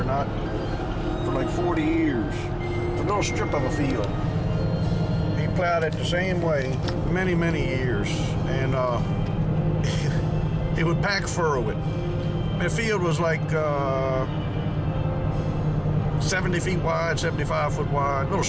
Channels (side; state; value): both; identical; correlation 1.00